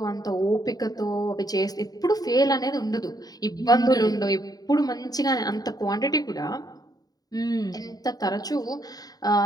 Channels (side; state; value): right; late; 0.18 ms